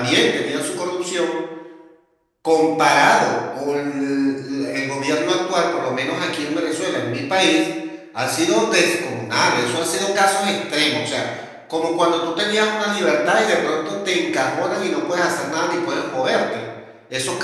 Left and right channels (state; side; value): identical; both; correlation 1.00